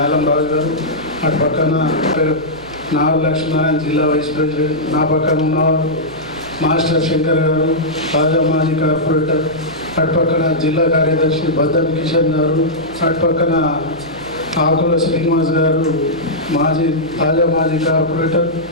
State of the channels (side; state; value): right; noise; hum, 21 dB below the sound